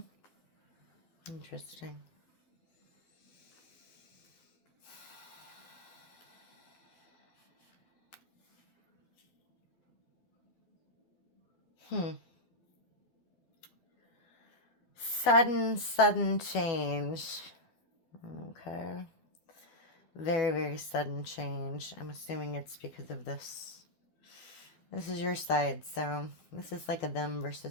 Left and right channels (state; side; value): late; right; 12 ms